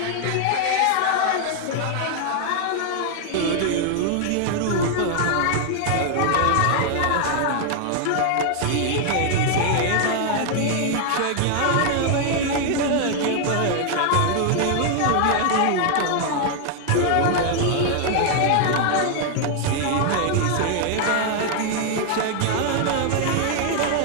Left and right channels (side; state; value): both; different; correlation 0.00